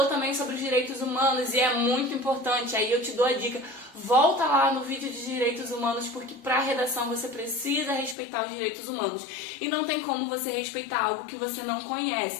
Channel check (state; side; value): drops out; right; at 8.2 s